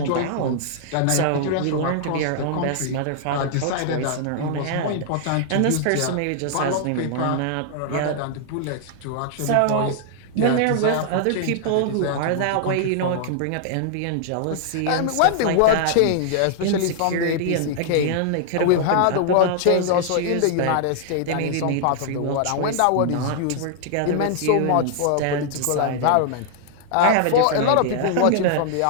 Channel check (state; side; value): different; both; correlation -0.01